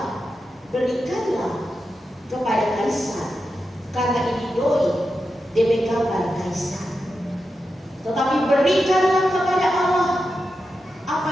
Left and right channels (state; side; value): normal; both; correlation 0.89